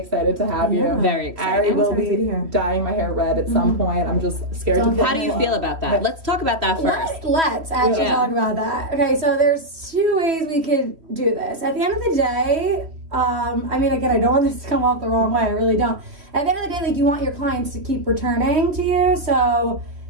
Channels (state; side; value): late; left; 3.1 ms